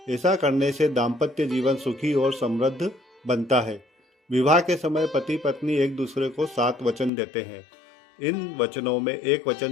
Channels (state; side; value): drops out; right; at 7.1 s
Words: ऐसा करने से दाम्पत्य जीवन सुखी और समृद्ध बनता है। विवाह के समय पति पत्नी एक दूसरे को 7 वचन देते हैं। इन वचनों में एक